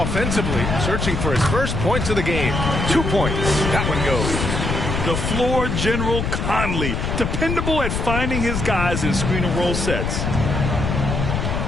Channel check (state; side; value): noise; left; rumble, 1 dB below the sound